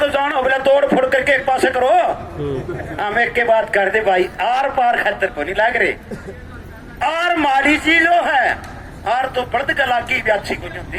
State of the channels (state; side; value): identical; both; correlation 1.00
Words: जानो, बोले तोड़ फोड़ करके एक पासे करो। हम एक के बात कर दे भाई, आर पार खतर को नहीं लग रहे, आर माड़ी चीजों है, आर तो पर्द कला की भी अच्छी कुछ होती